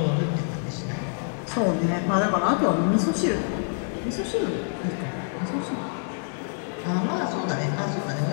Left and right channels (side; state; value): right; silent; 61 dB below the other